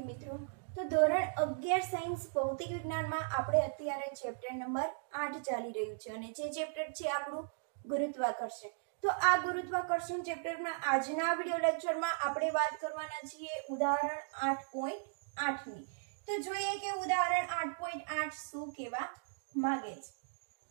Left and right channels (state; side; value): silent; left; digital silence